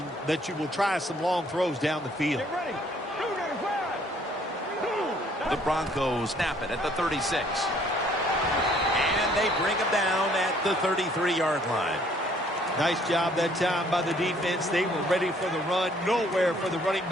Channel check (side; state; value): both; normal; correlation 0.61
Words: that you will try some long throws down the field. The Broncos snap it at the 36. And they bring him down at the 33-yard line. Nice job that time by the defense. They were ready for the run, nowhere for the running